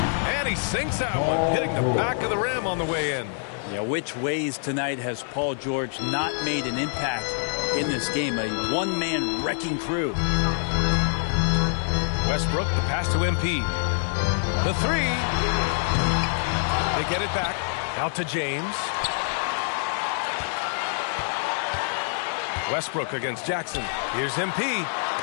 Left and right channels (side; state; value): right; silent; digital silence